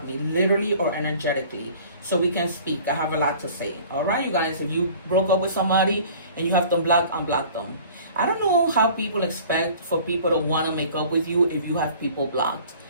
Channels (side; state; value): both; inverted; correlation -0.48